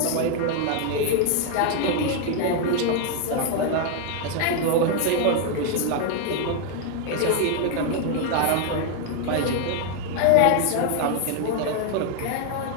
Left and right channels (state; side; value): different; both; correlation 0.01